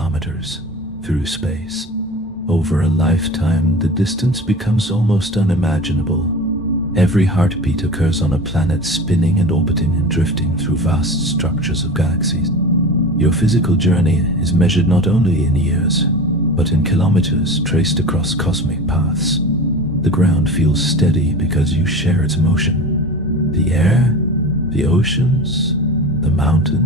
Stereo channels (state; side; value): normal; both; correlation 0.33